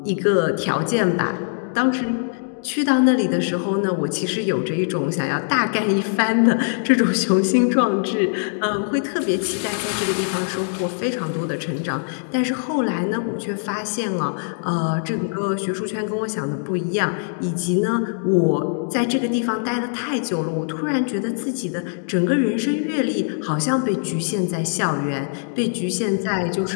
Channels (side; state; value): right; silent; digital silence